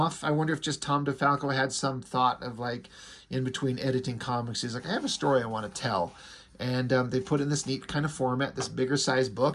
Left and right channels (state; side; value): identical; both; correlation 1.00